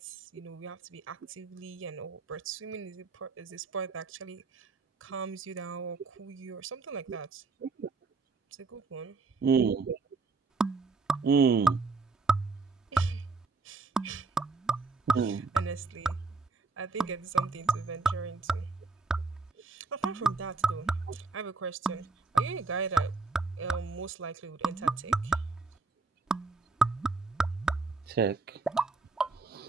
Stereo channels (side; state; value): left; quieter; 4.1 dB